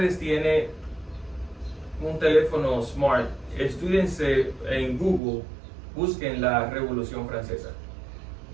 tiene un teléfono smart, estúdiense en Google, busquen la Revolución Francesa.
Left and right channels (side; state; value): left; drops out; at 5.2 s